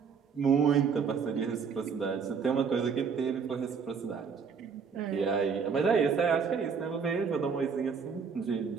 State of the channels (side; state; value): left; quieter; 6.0 dB